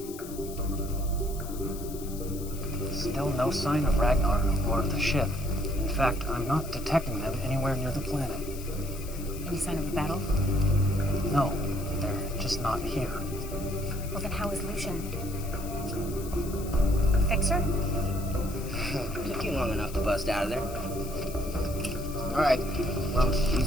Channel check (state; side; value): noise; left; hiss, 15 dB below the sound